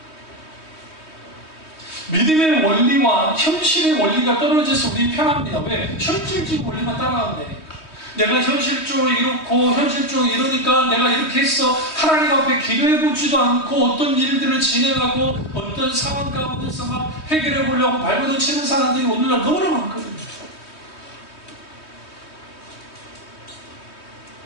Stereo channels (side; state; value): right; late; 3.2 ms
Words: 믿음의 원리와 현실의 원리가 떨어져서 우리 편합니다. 왜? 현실적인 원리만 따라가면 되니까. 내가 현실적으로 이렇고 현실적으로 이러니까 내가 이렇게 했어. 하나님 앞에 기도해보지도 않고 어떤 일들을 진행하고 어떤 상황 가운데서 막 해결해 보려고 발버둥 치는 사람들이 오늘날 너무나 많거든요.